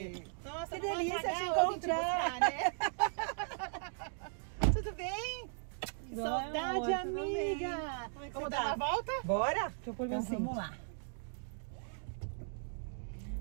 Nossa, que não vou delícia pagar te eu vim te buscar, né? Tudo bem? Que saudade, amiga! Como é que Vamos você dar tá? uma volta? Bora? Deixa eu pôr Então assim. vamos lá.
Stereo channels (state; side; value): silent; left; digital silence